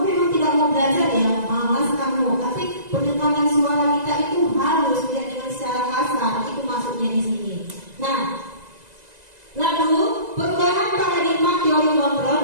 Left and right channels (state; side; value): late; left; 2.0 ms